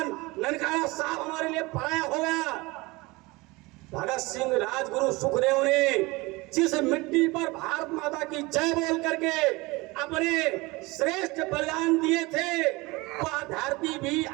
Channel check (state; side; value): quieter; left; 23.3 dB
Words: ननकाना साहब हमारे लिए पराया हो गया। भगत सिंह, राजगुरु, सुखदेव ने जिस मिट्टी पर भारत माता की जय बोल करके अपने श्रेष्ठ बलिदान दिए थे, वह धरती भी